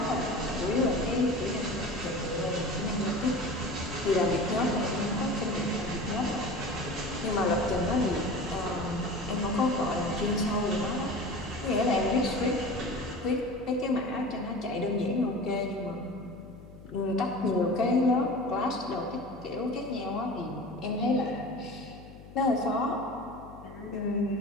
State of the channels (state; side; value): noise; left; hum, 18 dB below the sound